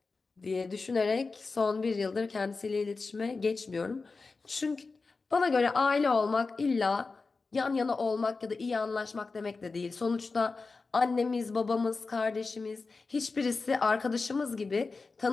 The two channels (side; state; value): right; quieter; 4.1 dB